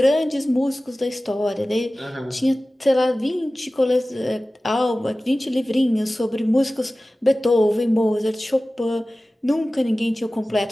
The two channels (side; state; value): both; normal; correlation 0.97